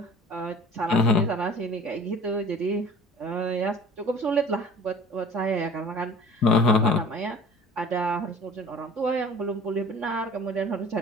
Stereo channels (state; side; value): normal; both; correlation 0.45